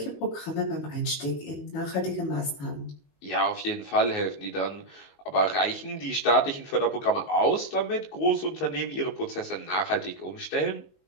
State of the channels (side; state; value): right; late; 22 ms